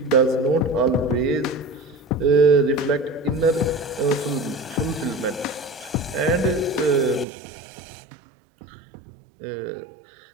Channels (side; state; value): left; drops out; at 7.2 s